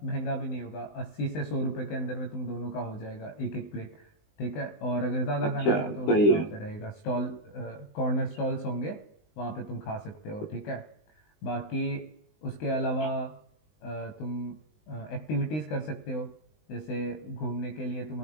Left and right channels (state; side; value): late; right; 20 ms